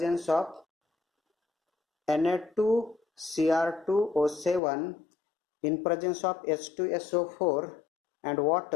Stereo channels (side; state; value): right; drops out; at 4.6 s